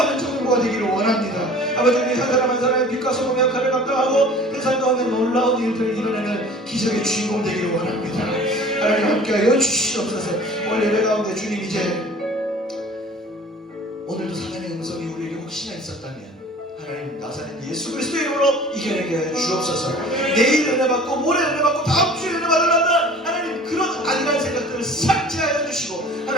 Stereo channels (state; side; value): normal; both; correlation 0.45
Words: 청년부가 되기를 원합니다. 아버지 우리 한 사람 한 사람의 빛과 소금의 역할을 감당하고 세상 가운데 놀라운 일들을 이뤄내는 기적의 주인공 되기를 원합니다. 하나님 함께하여 주시옵소서. 오늘 예배 가운데 주님 이제 오늘도 사단의 음성이 우리에게 혹시나 있었다면 하나님 나사렛 예수 그리스도의 이름으로 이겨내게 주옵소서. 내일 은혜 받고 모레 은혜 받고 다음 주에 은혜 받으려다 하나님 그런 안일한 생각들을 삭제하여 주시고